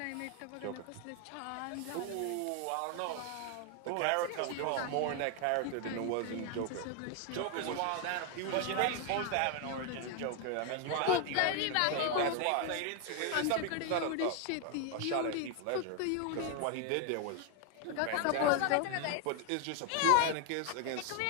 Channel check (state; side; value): different; both; correlation 0.01